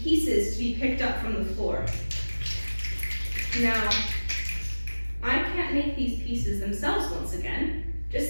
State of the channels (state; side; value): inverted; both; correlation -1.00